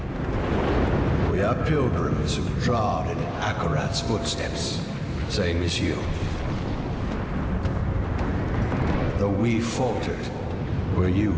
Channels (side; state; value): both; identical; correlation 1.00